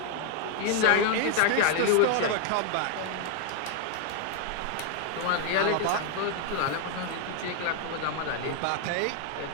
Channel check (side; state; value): both; different; correlation 0.00